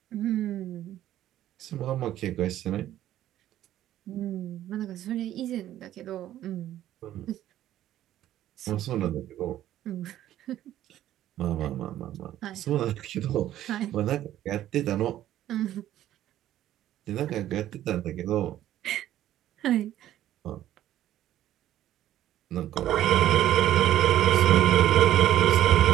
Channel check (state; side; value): quieter; left; 12.7 dB